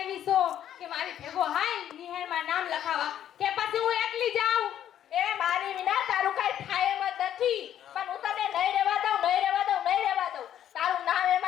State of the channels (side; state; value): right; quieter; 10.7 dB